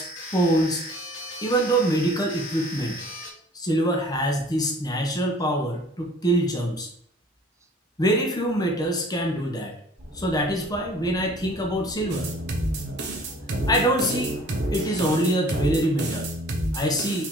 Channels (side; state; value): both; normal; correlation 0.51